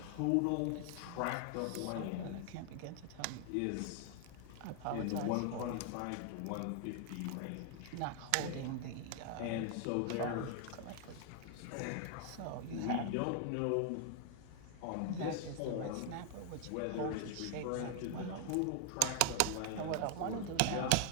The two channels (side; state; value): both; different; correlation 0.00